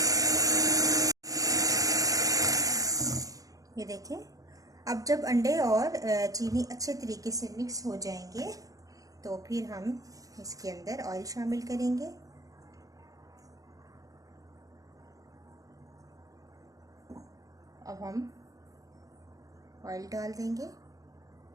ये देखें, अब जब अंडे और चीनी अच्छे तरीके से मिक्स हो जाएंगे तो फिर हम इसके अंदर ऑयल शामिल करेंगे। अब हम ऑयल डाल देंगे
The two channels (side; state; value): left; late; 0.17 ms